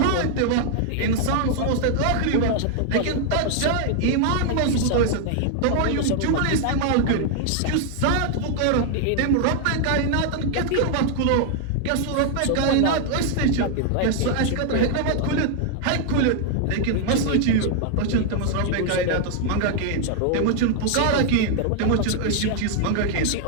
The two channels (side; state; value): both; different; correlation 0.00